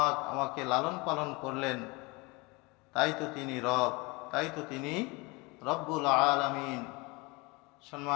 আমাকে লালন পালন করলেন। তাই তো তিনি রব, তাই তো তিনি রব্বুল আলামিন।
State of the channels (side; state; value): right; quieter; 26.1 dB